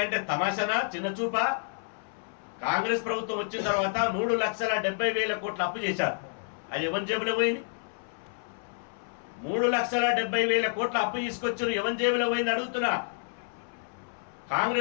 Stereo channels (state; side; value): silent; right; 58 dB below the other